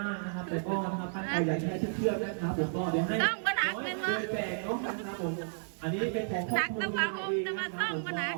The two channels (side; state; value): left; silent; 56 dB below the other